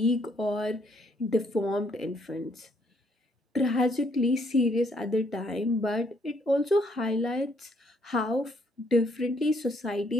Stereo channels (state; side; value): normal; both; correlation 0.69